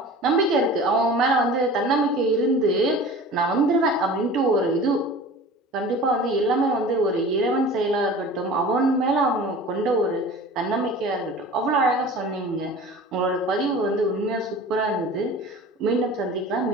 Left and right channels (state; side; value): normal; both; correlation 0.40